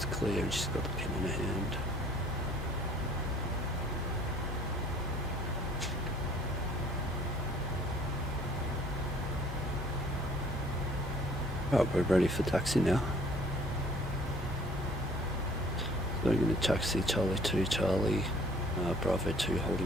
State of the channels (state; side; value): normal; both; correlation 0.55